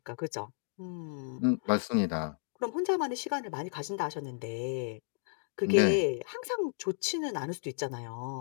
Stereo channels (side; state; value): right; silent; digital silence